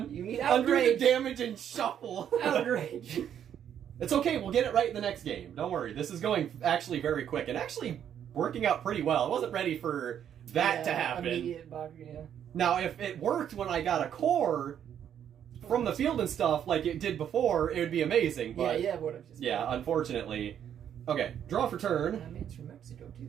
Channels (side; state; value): left; quieter; 9.4 dB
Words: You need Undo the outrage. damage and shuffle. Outrage. It's okay. We'll get it right in the next game. Don't worry. This is going actually very quick and actually working out pretty well. I wasn't ready for that to happen. Immediate Bakugan, yeah. Now, if it worked when I got a core from the field and stuff like it did before, it would be amazing. But Yeah, would have just. yeah, unfortunately. Okay, draw for turn. I mean, it's from Mexico,